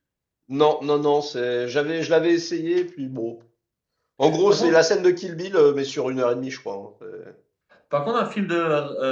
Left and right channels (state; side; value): identical; both; correlation 1.00